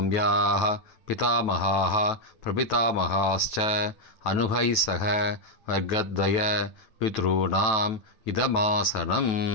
பிதாமகாஹ பிரபிதாமகாஸ்ச அனுகை சக வர்க்கத்வய பித்ருணாம் இதமாசனம்.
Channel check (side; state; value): right; late; 9.2 ms